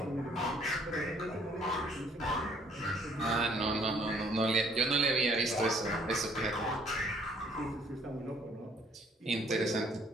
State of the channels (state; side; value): normal; both; correlation 0.61